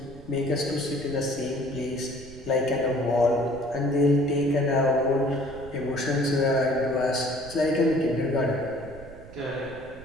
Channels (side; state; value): right; noise; rumble, 18 dB below the sound